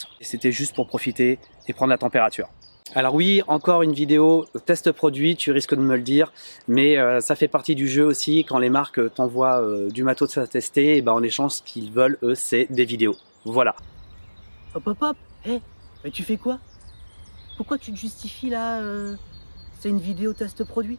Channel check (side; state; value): both; inverted; correlation -1.00